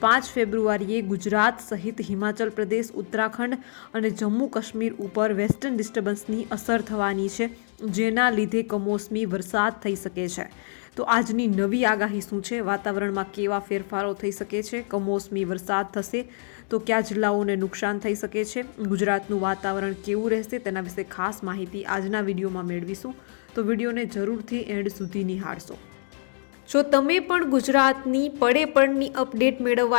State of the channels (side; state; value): right; silent; 61 dB below the other